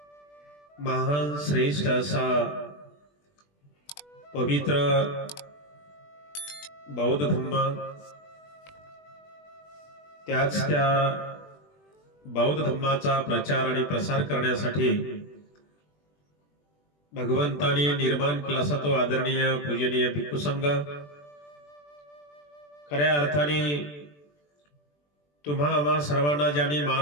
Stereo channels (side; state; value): right; late; 20 ms